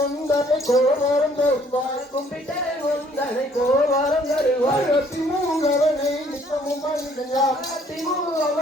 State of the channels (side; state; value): both; normal; correlation 0.61